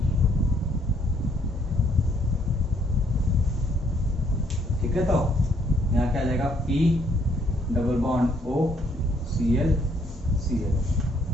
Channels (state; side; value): normal; both; correlation 0.68